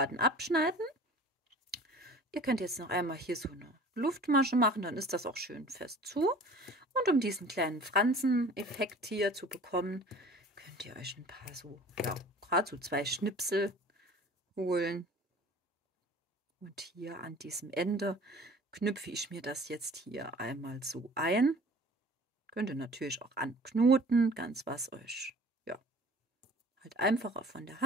abschneiden. Ihr könnt jetzt noch einmal hier so eine Luftmasche machen, dann ist das auch schön fest zu. Und um diesen kleinen Franseneffekt hier zu bekommen, könnt ihr euch ein paar so, ja, gerade so 2 Schnipsel holen. Und hier an diesem Ende knüpfe ich mir das jetzt hier einmal so ein. Könnt ihr natürlich auch anknoten, ganz was euch, ja, halt einfacher von der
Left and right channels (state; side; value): normal; both; correlation 0.46